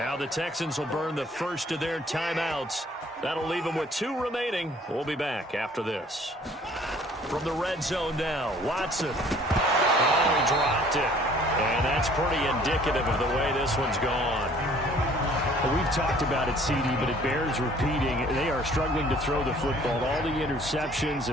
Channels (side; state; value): both; normal; correlation 0.55